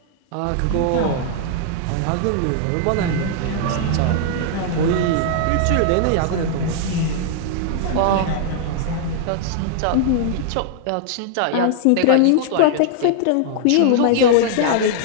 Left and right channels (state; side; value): different; both; correlation -0.01